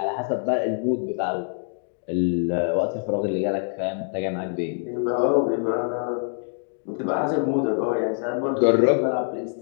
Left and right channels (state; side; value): silent; right; digital silence